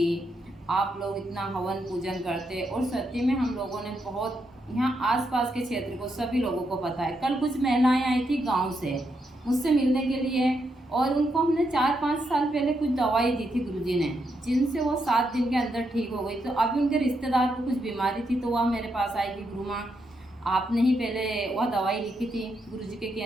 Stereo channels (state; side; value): normal; both; correlation 0.81